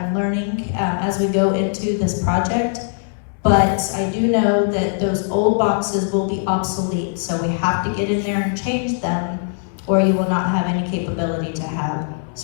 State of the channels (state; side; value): silent; right; digital silence